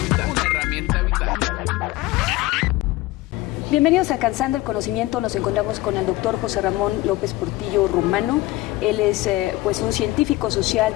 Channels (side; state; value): right; quieter; 18.6 dB